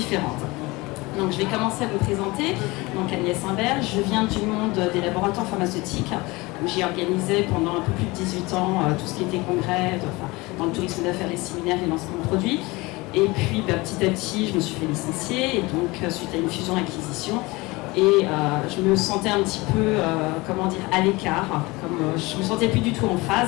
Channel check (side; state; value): right; quieter; 22.9 dB